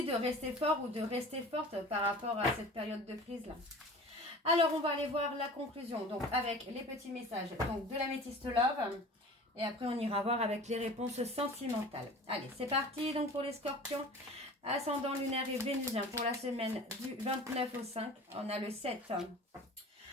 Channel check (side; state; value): both; normal; correlation 0.40